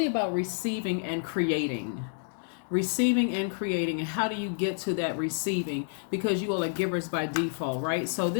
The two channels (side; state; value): right; silent; 58 dB below the other